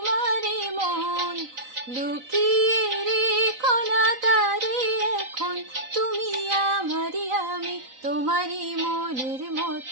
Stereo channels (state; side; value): late; left; 3.9 ms